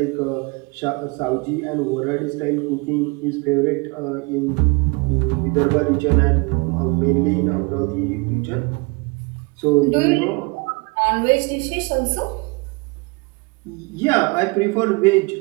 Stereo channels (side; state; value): left; quieter; 28.6 dB